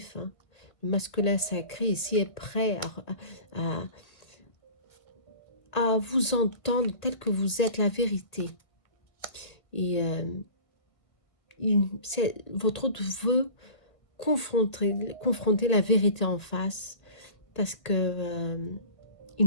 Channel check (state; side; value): late; right; 1.7 ms